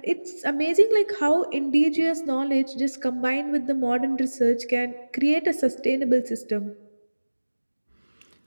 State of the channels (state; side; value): inverted; both; correlation -1.00